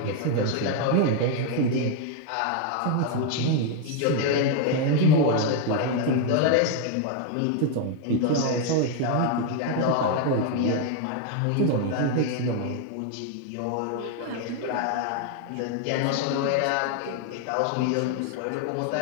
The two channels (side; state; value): both; different; correlation 0.01